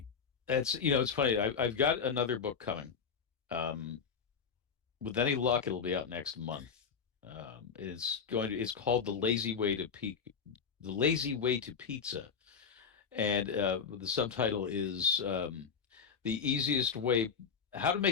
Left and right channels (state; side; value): quieter; right; 6.2 dB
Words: that's it's funny. I've got another book coming. Um, with any luck, it'll be out next month. It's called The Lazy Way to Pizza, and the subtitle is the easiest way, how to